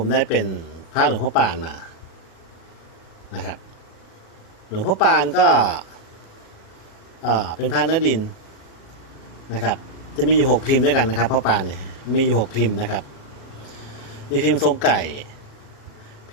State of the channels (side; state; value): right; late; 37 ms